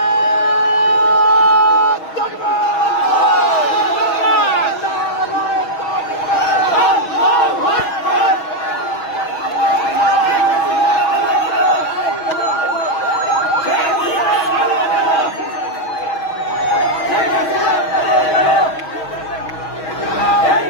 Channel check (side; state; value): right; late; 6.3 ms